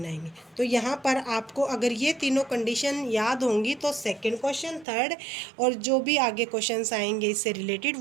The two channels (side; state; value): left; drops out; at 4.9 s